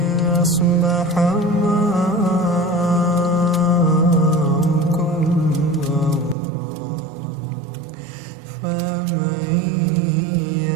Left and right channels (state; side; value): drops out; left; at 6.4 s